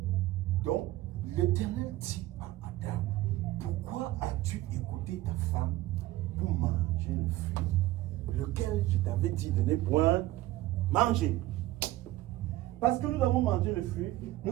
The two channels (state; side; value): quieter; left; 16.4 dB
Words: Donc, l'Éternel dit à Adam, pourquoi as-tu écouté ta femme pour manger le fruit, lequel je t'avais dit de ne point manger? Parce que nous avons mangé le fruit, nous